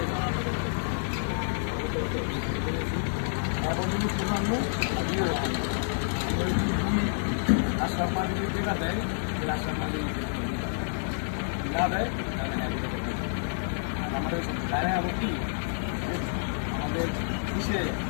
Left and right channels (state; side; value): silent; right; digital silence